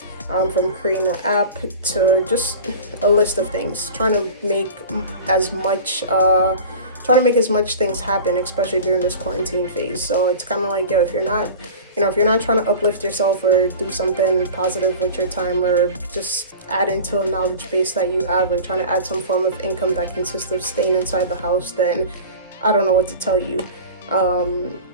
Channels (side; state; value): both; inverted; correlation -0.36